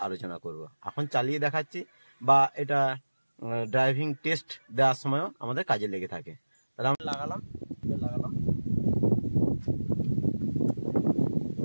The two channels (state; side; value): inverted; both; correlation -1.00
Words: আলোচনা করব। এখন চালিয়ে দেখাচ্ছি বা এটা ড্রাইভিং টেস্ট দেওয়ার সময়ও আমাদের কাজে লেগে থাকে। তাহলে আমরা লাগালাম